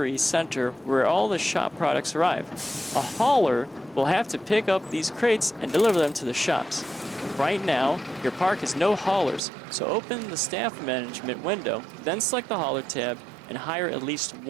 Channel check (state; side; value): drops out; left; at 9.4 s